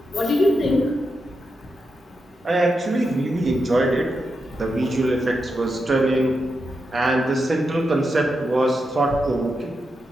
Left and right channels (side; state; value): both; normal; correlation 0.86